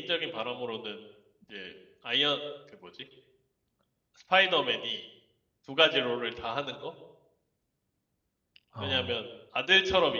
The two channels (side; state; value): both; identical; correlation 1.00